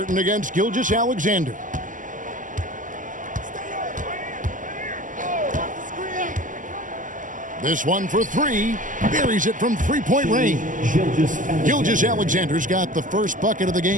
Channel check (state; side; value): late; left; 0.38 ms